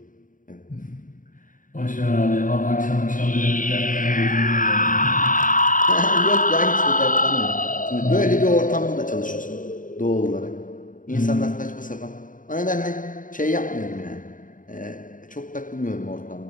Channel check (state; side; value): late; right; 0.39 ms